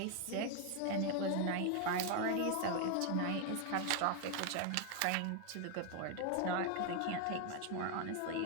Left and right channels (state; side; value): different; both; correlation 0.00